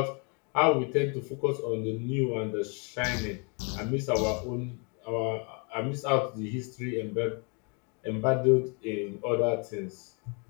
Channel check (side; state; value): right; quieter; 35.5 dB